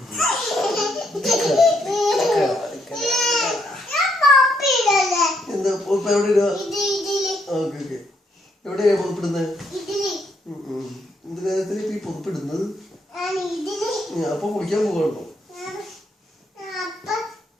എന്താ എവിടെ എവിടെയാ പുറപ്പെടുന്നത്? എന്ത് കാര്യത്തിൽ ഈ പുറപ്പെടുന്നത്? അപ്പൊ കുളിക്കാൻ പോകണോ?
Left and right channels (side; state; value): both; normal; correlation 0.75